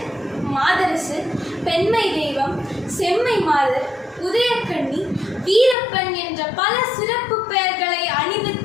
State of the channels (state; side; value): drops out; right; at 5.8 s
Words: மாதரசு, பெண்மை தெய்வம், செம்மை மாதர், உதயக்கண்ணி, வீரப்பன் என்ற பல சிறப்பு பெயர்களை